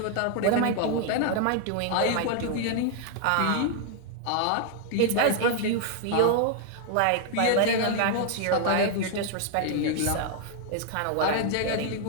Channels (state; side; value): different; both; correlation 0.00